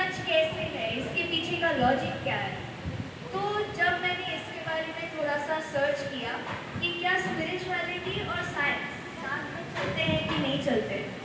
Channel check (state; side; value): identical; both; correlation 1.00